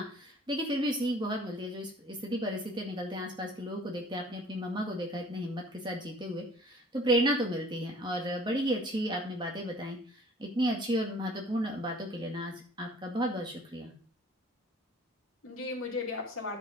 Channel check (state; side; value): normal; both; correlation 0.51